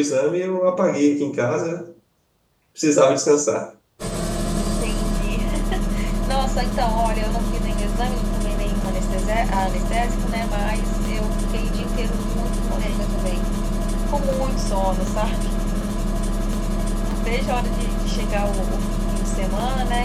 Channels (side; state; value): both; identical; correlation 1.00